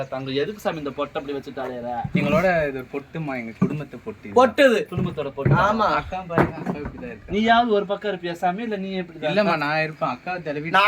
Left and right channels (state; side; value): identical; both; correlation 1.00